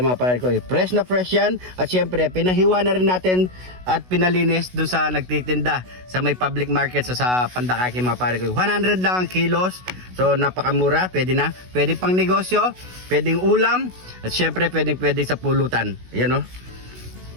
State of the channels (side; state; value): left; late; 16 ms